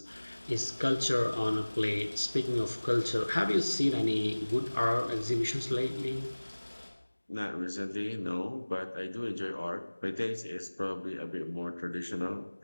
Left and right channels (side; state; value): both; inverted; correlation -1.00